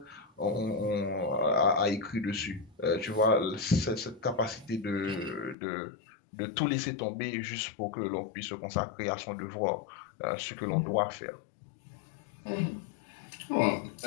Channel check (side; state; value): right; drops out; at 5.6 s